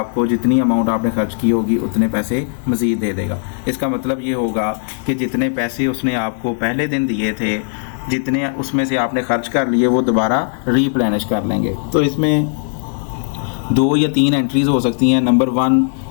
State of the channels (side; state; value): right; silent; 56 dB below the other